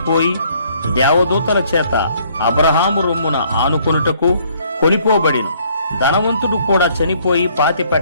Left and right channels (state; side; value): inverted; both; correlation -0.63